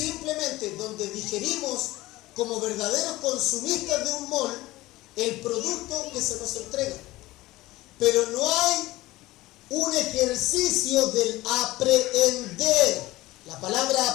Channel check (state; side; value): quieter; right; 18.3 dB